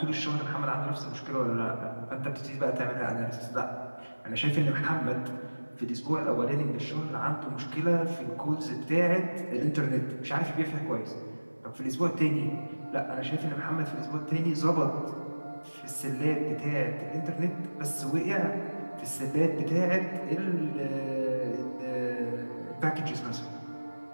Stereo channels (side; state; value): both; inverted; correlation -1.00